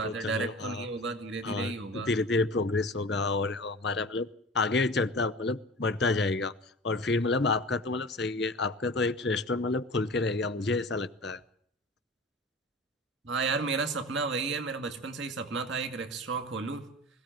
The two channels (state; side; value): normal; both; correlation 0.37